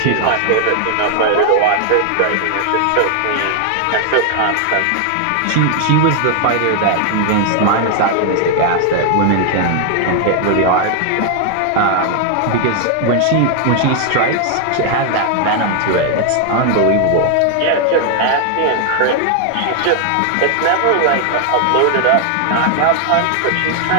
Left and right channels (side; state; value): both; different; correlation 0.00